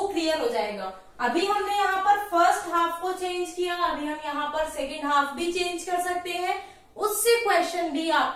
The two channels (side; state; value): both; identical; correlation 1.00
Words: क्लियर हो जाएगा। अभी हमने यहाँ पर हाफ को चेंज किया, अभी हम यहाँ पर सेकेंड हाफ भी चेंज कर सकते हैं, उससे क्वेश्चन भी